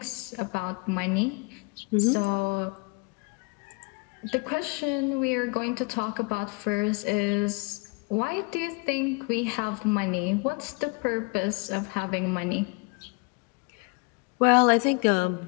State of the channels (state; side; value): quieter; right; 31.2 dB